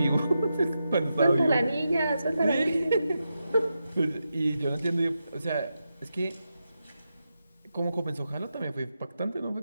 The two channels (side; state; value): both; inverted; correlation -0.88